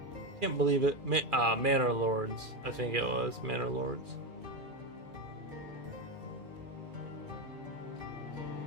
Can't believe it. Manor Lords. I think it was Manor Lords.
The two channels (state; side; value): late; left; 2.4 ms